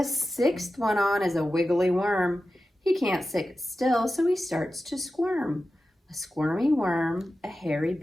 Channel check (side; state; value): both; normal; correlation 0.93